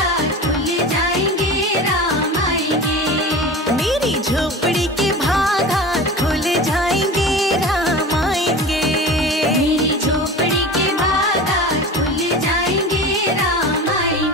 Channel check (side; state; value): both; normal; correlation 0.33